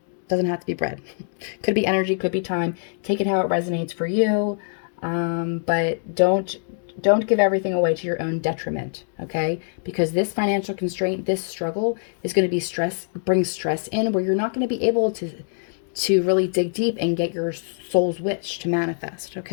Doesn't have to be bread. Could be energy, could be time. Take it how it resonates for you. But don't give everything away to your own detriment, okay? Because this financial constraint, this struggle is going to be bring stress in where you're not going to be able to really dig deep and get your soul's wish to manifest,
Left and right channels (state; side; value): silent; right; 62 dB below the other